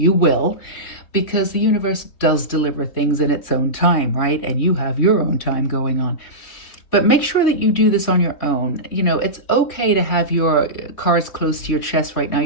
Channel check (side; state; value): right; late; 3.5 ms